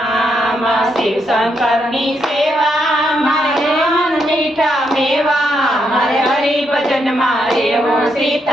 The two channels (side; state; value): both; normal; correlation 0.79